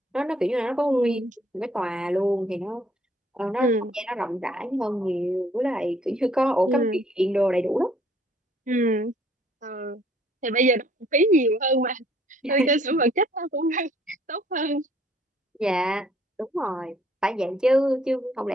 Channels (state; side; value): normal; both; correlation 0.61